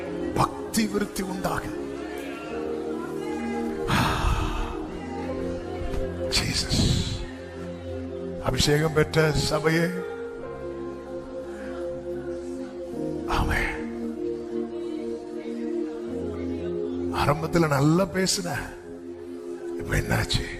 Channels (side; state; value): both; identical; correlation 1.00